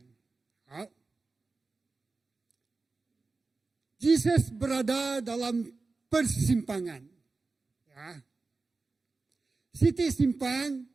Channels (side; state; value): left; quieter; 3.9 dB